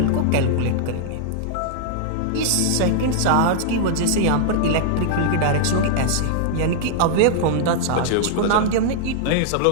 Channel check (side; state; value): both; different; correlation -0.01